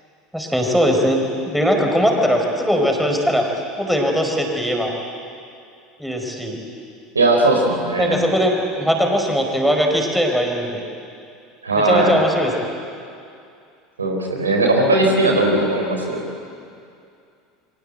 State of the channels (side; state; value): both; normal; correlation 0.36